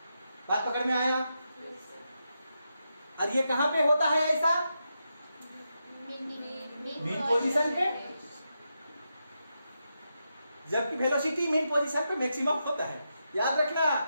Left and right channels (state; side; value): inverted; both; correlation -0.86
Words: बात पकड़ में आया? और ये कहां पे होता है ऐसा? मीन पोजीशन पे, जबकि वेलोसिटी मीन पोजीशन पे मैक्सिमम होता है। याद रखना,